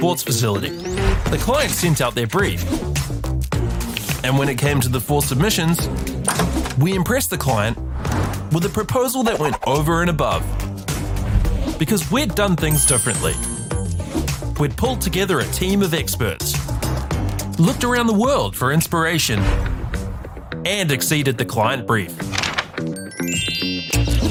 facility. The client sent out their brief. And when it came to the 4 submissions, we impressed the client with a proposal that went over and above. Because we'd done things differently. We'd pulled together a team of experts, looked around the world for inspiration, and exceeded the client brief.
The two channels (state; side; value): identical; both; correlation 1.00